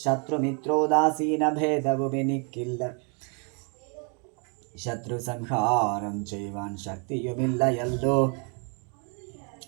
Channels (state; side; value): quieter; left; 38.0 dB